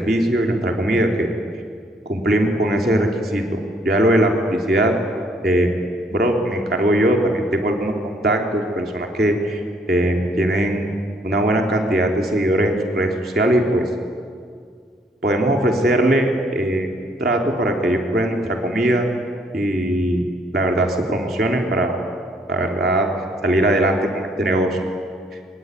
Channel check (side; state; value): both; normal; correlation 0.65